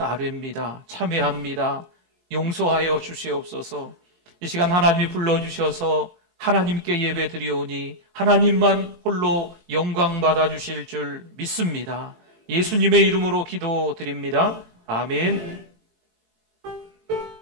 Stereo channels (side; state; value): left; late; 22 ms